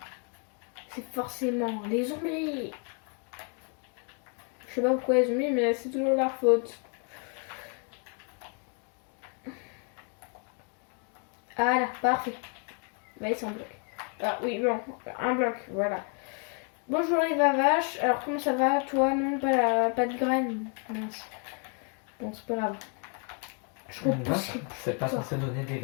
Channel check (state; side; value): quieter; right; 39.2 dB